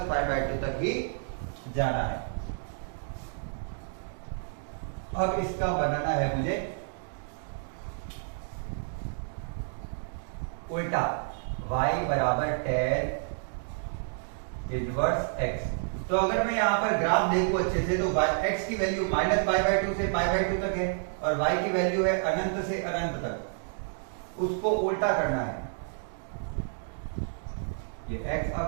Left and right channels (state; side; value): silent; left; digital silence